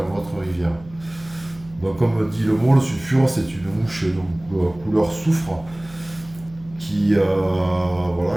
votre rivière. Donc comme dit le mot, le sulfure c'est une mouche couleur soufre qui a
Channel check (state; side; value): noise; right; hum, 21 dB below the sound